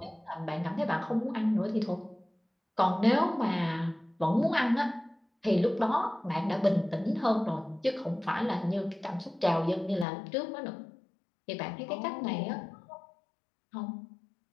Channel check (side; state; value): right; drops out; at 10.1 s